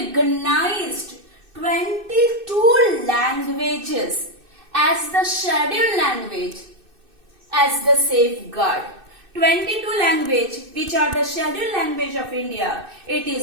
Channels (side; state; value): left; late; 2.6 ms